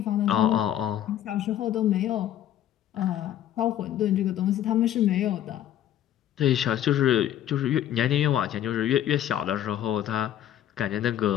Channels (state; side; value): quieter; right; 11.4 dB